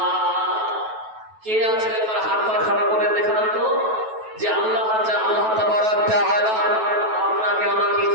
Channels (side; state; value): left; late; 9.2 ms